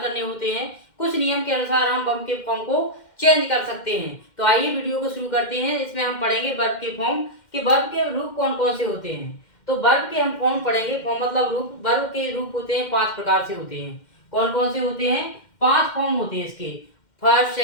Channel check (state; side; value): late; right; 2.1 ms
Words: करने होते हैं, कुछ नियम के अनुसार हम वर्ब के फॉर्म को चेंज कर सकते हैं। तो आइए वीडियो को शुरू करते हैं। इसमें हम पढ़ेंगे वर्ब के फॉर्म कि वर्ब के रूप कौन कौन से होते हैं। तो वर्ब के हम फॉर्म पढ़ेंगे। फॉर्म मतलब रूप। वर्ब के रूप होते हैं 5 प्रकार से होते हैं। कौन कौन से होते हैं? 5 फॉर्म होते हैं इसके, first,